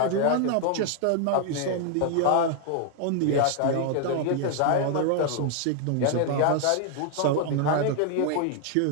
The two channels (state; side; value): different; both; correlation 0.00